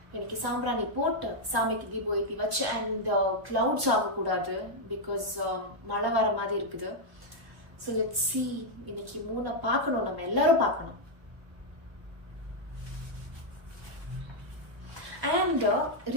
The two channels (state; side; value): late; left; 1.1 ms